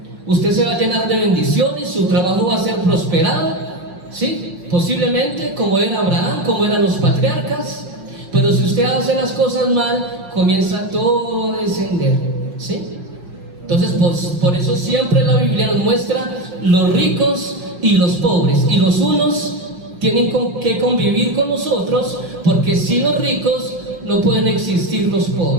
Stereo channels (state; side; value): late; left; 5.6 ms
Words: Usted se va a llenar de bendiciones, su trabajo va a ser prosperado, ¿sí? Posiblemente como era Abraham, como eran los patriarcas. Pero si usted hace las cosas mal, comienza todo a descender, ¿sí? Entonces, por eso siempre la Biblia nos muestra los ricos y los pobres, y los unos tienen que convivir con nosotros, porque sin los ricos no pueden existir los